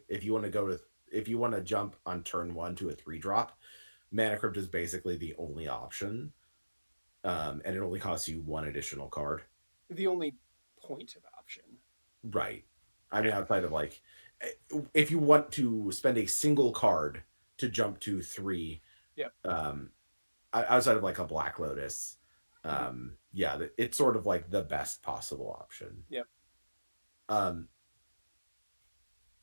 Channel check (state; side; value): inverted; both; correlation -1.00